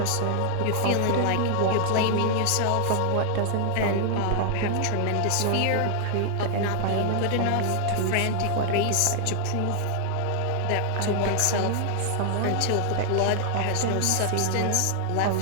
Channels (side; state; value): both; different; correlation 0.00